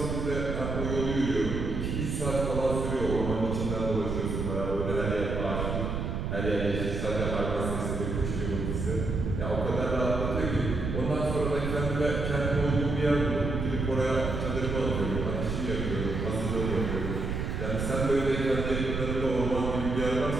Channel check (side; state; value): right; noise; rumble, 2 dB below the sound